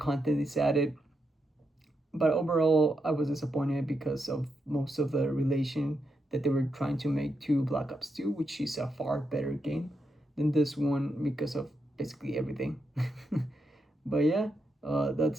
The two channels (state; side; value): normal; both; correlation 0.84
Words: is added. But overall, I was disappointed because of most of the relation that they were trying to make to Black Ops 2, which is a far better game than this one because of basically everything. But yeah,